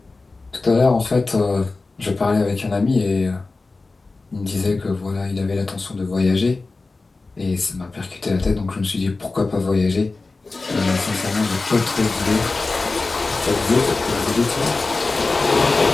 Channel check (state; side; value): quieter; right; 3.6 dB